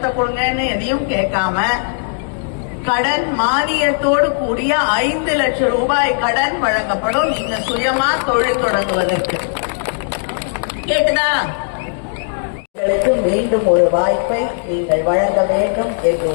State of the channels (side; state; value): right; silent; digital silence